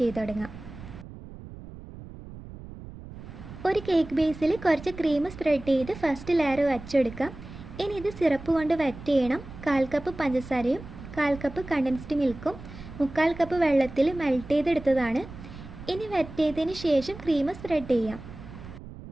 ചെയ്ത് തുടങ്ങാം. ഒരു കേക്ക് ബേസിൽ കുറച്ച് ക്രീം സ്പ്രെഡ് ചെയ്ത് ഫസ്റ്റ് ലെയർ വച്ചെടുക്കാം. ഇനി ഇത് സിറപ്പ് കൊണ്ട് വെറ്റ് ചെയ്യണം. 1/4 കപ്പ് പഞ്ചസാരയും 1/4 കപ്പ് കണ്ടൻസ്ഡ് മിൽക്കും 3/4 കപ്പ് വെള്ളത്തിൽ മെൽറ്റ് ചെയ്തെടുത്തതാണ്. ഇനി വെറ്റ് ചെയ്തതിന് ശേഷം ക്രീം സ്പ്രെഡ് ചെയ്യാം.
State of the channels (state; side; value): noise; right; rumble, 14 dB below the sound